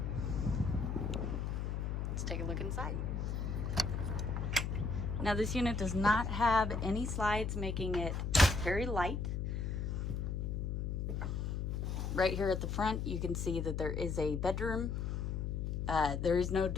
Let's take a look inside. Now, this unit does not have any slides, making it very light. Right here at the front, you can see that there is a bedroom. There is no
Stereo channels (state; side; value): noise; left; hum, 1 dB below the sound